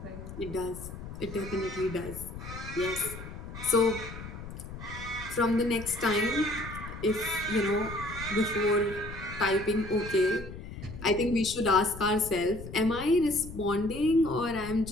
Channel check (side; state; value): left; noise; rumble, 11 dB below the sound